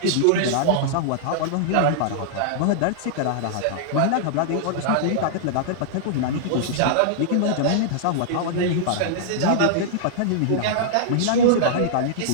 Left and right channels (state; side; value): different; both; correlation -0.01